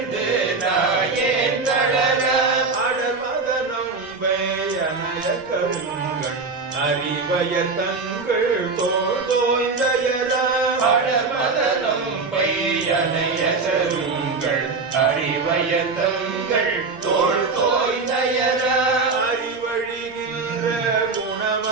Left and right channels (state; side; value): quieter; left; 4.2 dB